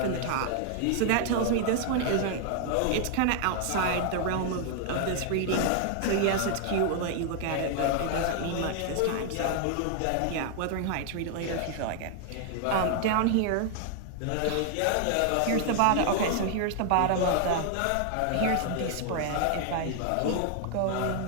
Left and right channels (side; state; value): both; different; correlation 0.00